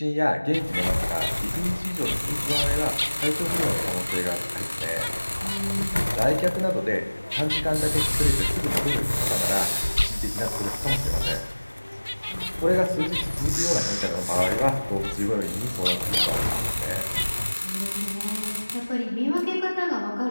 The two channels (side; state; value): both; inverted; correlation -1.00